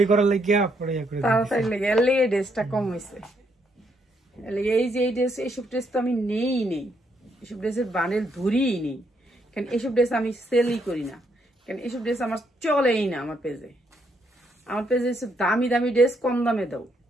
করার লাগিয়া পরে ইয়া করে দিছে, তাড়াতাড়ি লেগে এর লেগে ড্রেসটা কম হয়েছে। এই যে এই ড্রেস, এইসব ড্রেস তো আমি নেই, এইসব ড্রেসের বান্ডেল ধরিই নেই, কারণ এইসব ড্রেস আমি সেলই করি না, কারণ এইসব ড্রেস আমার চলেই না। আমার পেজে দামি দামি ড্রেস কম দামে দাও।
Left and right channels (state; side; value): normal; both; correlation 0.74